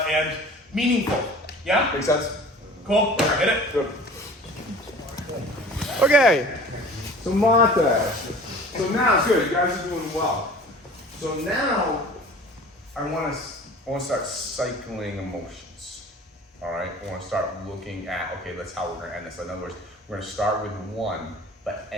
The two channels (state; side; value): normal; both; correlation 0.44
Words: meaningful. Yeah? Makes sense? Cool. Hit it. Good. Okay. So montage. So now it's good. You guys are doing well. So now I want to start cycling emotions. All right. I want to start looking at that's how we're going to end this. In other words, we're going to start with one but